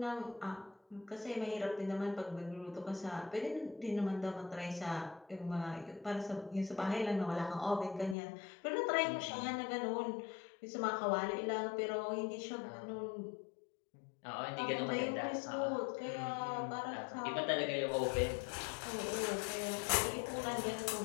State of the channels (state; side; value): drops out; right; at 8.2 s